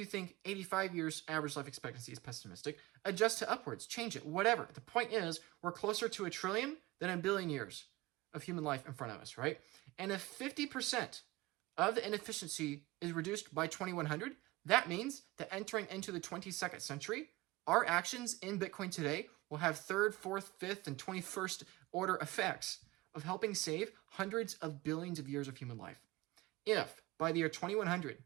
think 85 years average life expectancy is pessimistic, adjust to upwards, change it, whatever. The point is, we're closer to 1 trillion than 1 billion years of human life in front of us, right? And if 50% of the inefficiency is reduced by 2100, That means that entering into the 22nd century, our actions in Bitcoin today will have third, fourth, fifth, and 21st order effects of helping save hundreds of billions of years of human life. If by the year 2100,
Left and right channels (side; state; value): left; quieter; 20.3 dB